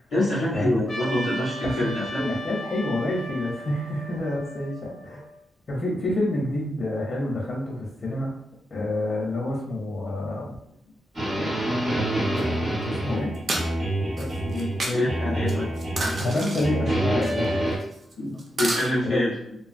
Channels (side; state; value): both; normal; correlation 0.85